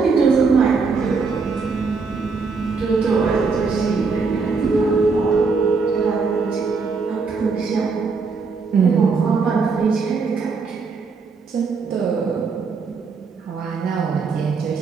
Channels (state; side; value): quieter; left; 4.7 dB